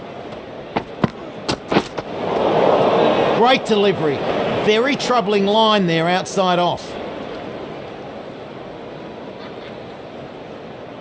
Great delivery. Very troubling line there outside off.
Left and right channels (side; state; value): both; identical; correlation 1.00